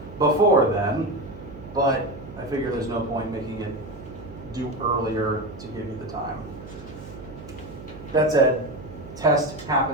before then, but I figure there's no point making it due earlier to give you the time. That said, test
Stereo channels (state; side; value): noise; right; hum, 15 dB below the sound